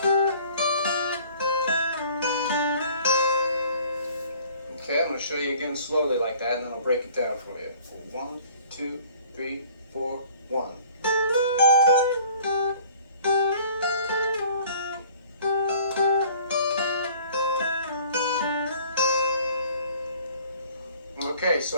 Okay, I'm going to show you again slowly like that, and then I'll break it down for you. 1, 2, 3, 4, 1. Okay,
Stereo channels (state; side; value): inverted; both; correlation -0.51